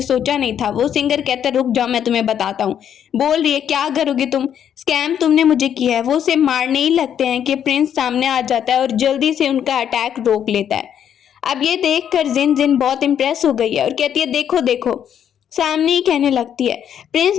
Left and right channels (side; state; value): right; quieter; 9.2 dB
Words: सोचा नहीं था। वो सिंगर कहता है रुक जाओ मैं तुम्हें बताता हूँ। बोल रही है क्या करोगी तुम, स्कैम तुमने मुझे किया है। वो उसे मारने ही लगते हैं कि प्रिंस सामने आ जाता है और जल्दी से उनका अटैक रोक लेता है। अब ये देखकर जिन जिन बहुत इंप्रेस हो गई है और कहती है देखो देखो, सामने ही कहने लगती है प्रिंस